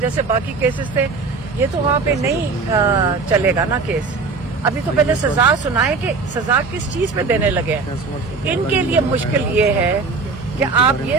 باقی کیسز تھے یہ تو وہاں پہ نہیں چلے گا نا کیس، ابھی تو پہلے سزا سنائے کہ سزا کس چیز پہ دینے لگے ہیں۔ ان کے لیے مشکل یہ ہے کہ آپ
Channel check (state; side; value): quieter; left; 4.4 dB